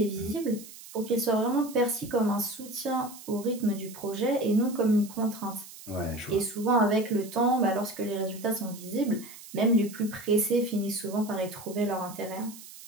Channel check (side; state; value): right; noise; hiss, 17 dB below the sound